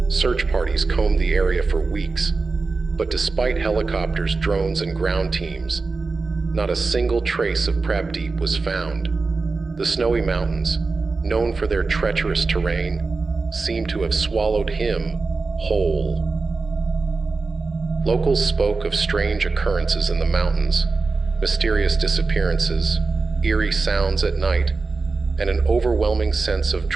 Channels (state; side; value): quieter; left; 4.0 dB